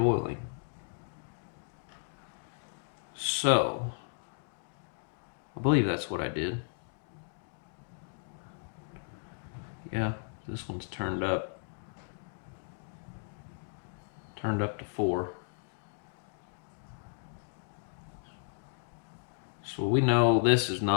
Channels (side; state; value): right; silent; digital silence